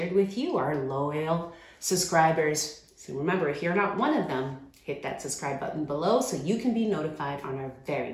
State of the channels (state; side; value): identical; both; correlation 1.00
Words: with you, our loyal subscribers. So remember, if you're not one of them, hit that subscribe button below so you can be notified on our very